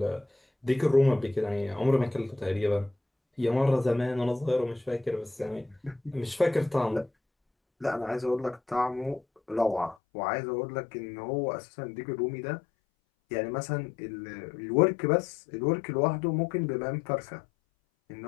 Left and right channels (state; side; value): drops out; right; at 10.0 s